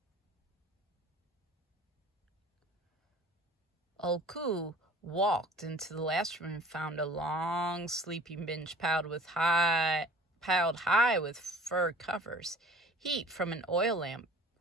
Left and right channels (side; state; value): both; normal; correlation 0.46